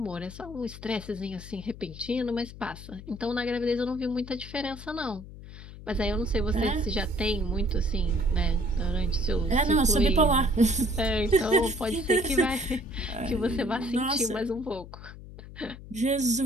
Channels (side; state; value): left; noise; hum, 15 dB below the sound